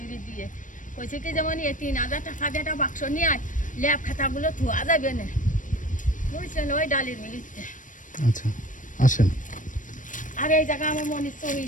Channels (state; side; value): late; right; 0.38 ms